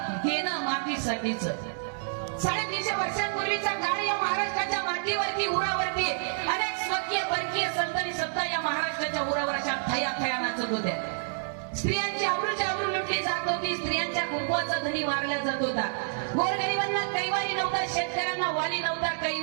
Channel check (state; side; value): silent; left; digital silence